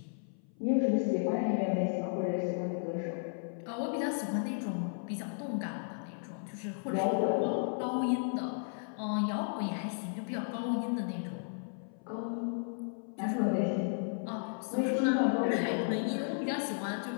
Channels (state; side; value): silent; right; 55 dB below the other